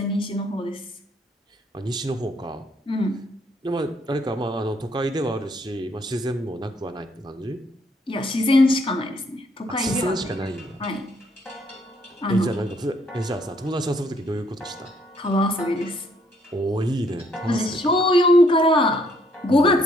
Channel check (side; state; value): both; normal; correlation 0.68